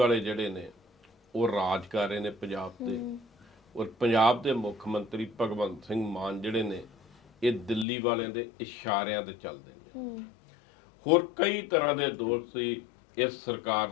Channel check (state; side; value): drops out; right; at 7.9 s